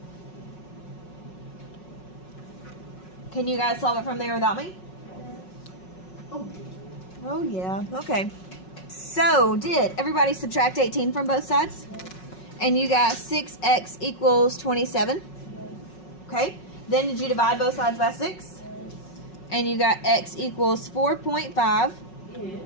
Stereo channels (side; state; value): right; late; 5.4 ms